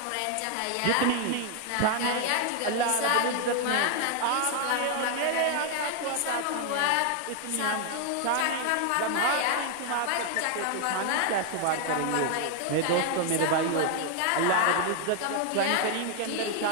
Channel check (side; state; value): both; different; correlation 0.00